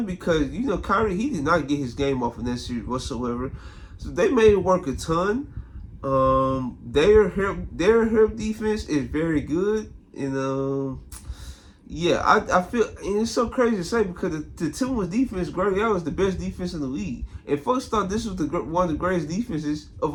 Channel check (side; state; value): both; identical; correlation 1.00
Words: because Kyrie, he did not get his game off in that series whatsoever. So they made him work a ton. Their help defense is very good, and yeah, I feel, and it's so crazy to say because the Timberwolves defense, Greg Allen, is the best defense in the league, and folks thought this was one of the greatest defenses of